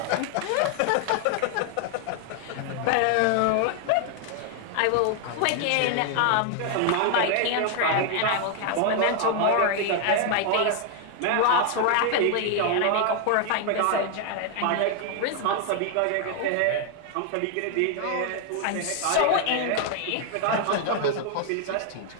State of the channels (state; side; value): different; both; correlation 0.00